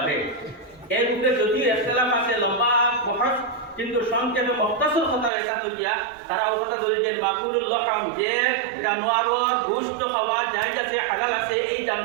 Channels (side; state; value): left; drops out; at 5.3 s